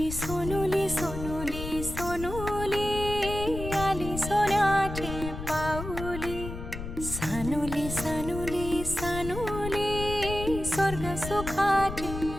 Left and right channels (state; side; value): noise; left; rumble, 8 dB below the sound